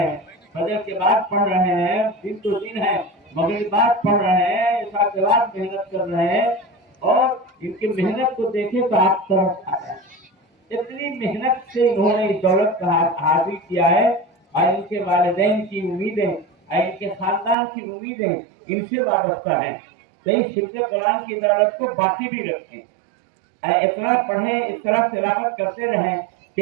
فجر کے بعد پڑھ رہے ہیں، دن تو دن ہے، مغرب بعد پڑھ رہے ہیں، عشاء کے بعد محنت کر رہے ہیں، اور ان کی محنت کو دیکھیں تو آپ ترس آ جائیں۔ اتنی محنت سے انہوں نے اس دولت کا حاصل کیا ہے، اور ان کے والدین کی امیدیں اور ان کے خاندان کی امیدیں ان سے وابستہ ہیں۔ تو اس حفظ قرآن کی دولت کو باقی بھی رکھیں، اتنا پڑھیں، اس طرح تلاوت کرتے رہیں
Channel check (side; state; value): left; drops out; at 17.6 s